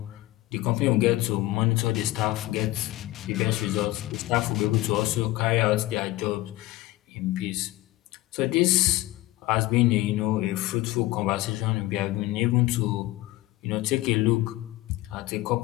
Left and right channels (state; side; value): quieter; right; 18.0 dB